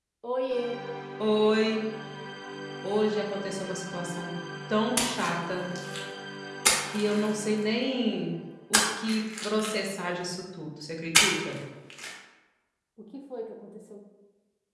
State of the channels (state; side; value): identical; both; correlation 1.00